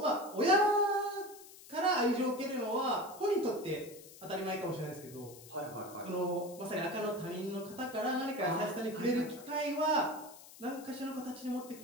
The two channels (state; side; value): noise; left; hiss, 19 dB below the sound